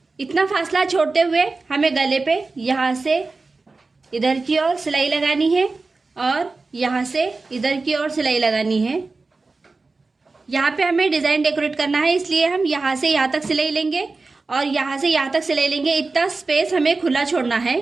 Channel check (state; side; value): quieter; left; 3.8 dB